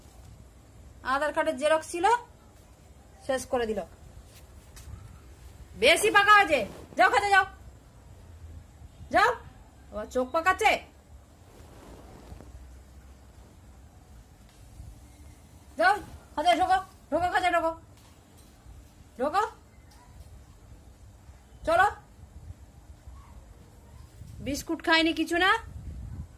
আধার কার্ডের জেরক্স ছিল, শেষ করে দিল। বেশি পাকা হয়েছে, যাও কাজে যাও, যাও। আবার চোখ পাকাচ্ছে। যাও কাজে, ঢোকো ঢোকো, কাজে ঢোকো, ঢোকো, চলো। বিস্কুট খাইনি কিছু না?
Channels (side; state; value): both; identical; correlation 1.00